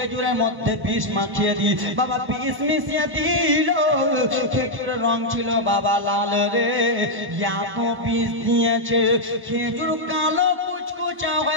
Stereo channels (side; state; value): left; late; 1.1 ms